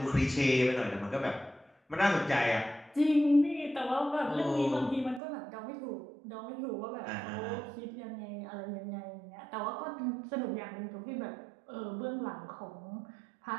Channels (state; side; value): drops out; left; at 5.2 s